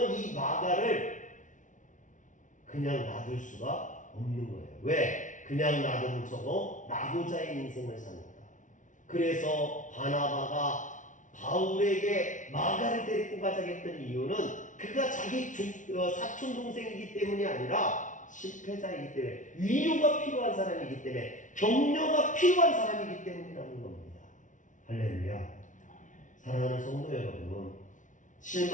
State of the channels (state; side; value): late; right; 0.37 ms